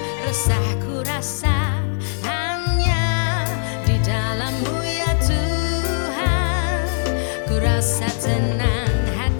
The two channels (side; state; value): right; silent; digital silence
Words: resah ku rasa, hanya di dalam-Mu ya Tuhan ku rasa tenang